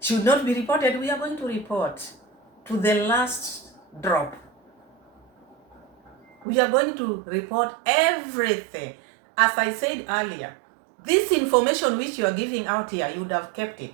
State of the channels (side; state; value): left; drops out; at 6.5 s